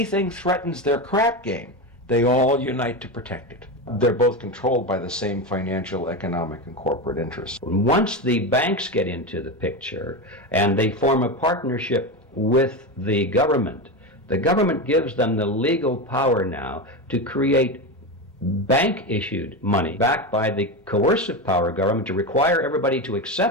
threatens their crap game, they all unite to protect it. They're both controlled by the same financial, economic, and corporate interests. Once the banks get into the picture and they form a partnership with the government gives them the legal power now to create bank-issued money backed by the coercive power of government to require everybody to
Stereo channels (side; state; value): both; normal; correlation 0.18